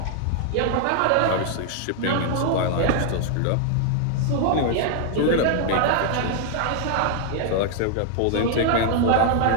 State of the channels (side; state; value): both; different; correlation 0.00